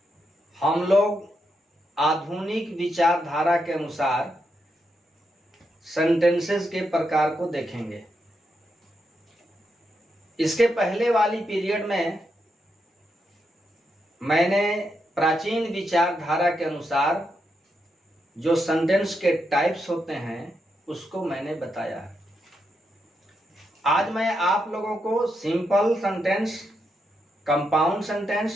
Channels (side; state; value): both; normal; correlation 0.82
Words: हम लोग आधुनिक विचारधारा के अनुसार सेंटेंसेस के प्रकार को देखेंगे। इसके पहले वाली पीरियड में मैंने प्राचीन विचारधारा के अनुसार जो सेंटेंस के टाइप्स होते हैं उसको मैंने बताया है। आज मैं आप लोगों को simple sentence, compound